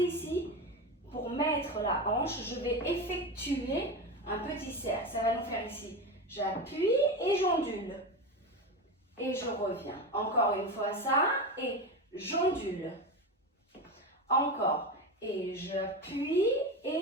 pour mettre la hanche, je vais effectuer un petit cercle. Ça va nous faire ici. J'appuie et j'ondule. Et je reviens. Encore une fois ça. Et j'ondule. Encore. Et j'appuie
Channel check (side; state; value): both; normal; correlation 0.21